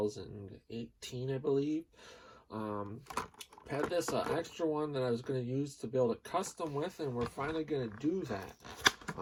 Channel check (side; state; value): both; identical; correlation 1.00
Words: I believe. Had this extra one that I was going to use to build a custom with, and we're finally going to do that.